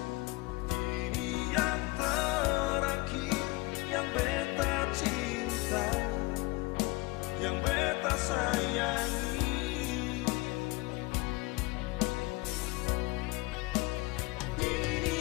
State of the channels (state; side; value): quieter; right; 24.3 dB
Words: Ini yang terakhir yang beta cinta, yang beta sayangi.